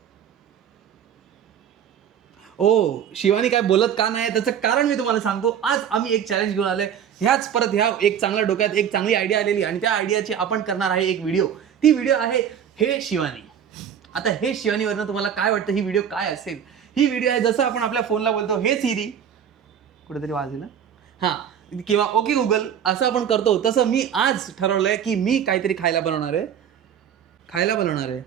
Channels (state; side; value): quieter; left; 8.7 dB